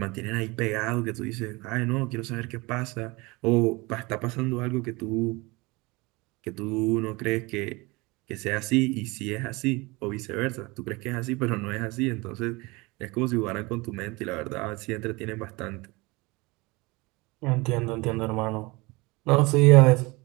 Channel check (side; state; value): left; quieter; 24.5 dB